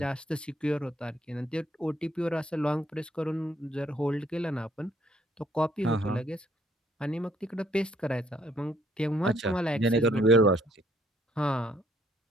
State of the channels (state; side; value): normal; both; correlation 0.67